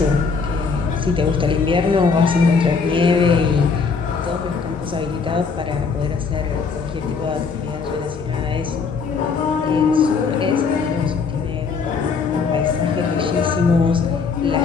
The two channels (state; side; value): quieter; right; 5.2 dB